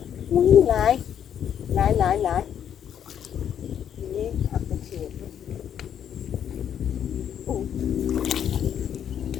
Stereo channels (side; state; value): right; quieter; 9.2 dB